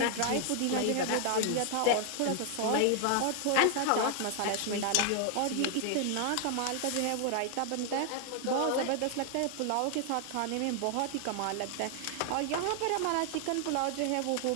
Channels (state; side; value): different; both; correlation 0.00